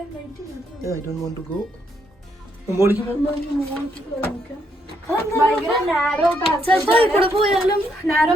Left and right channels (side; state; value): both; normal; correlation 0.75